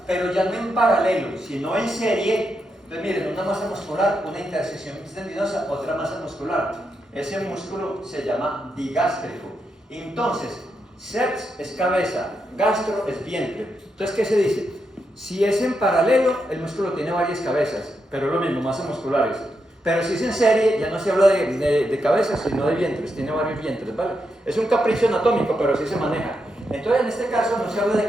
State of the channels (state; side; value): normal; both; correlation 0.83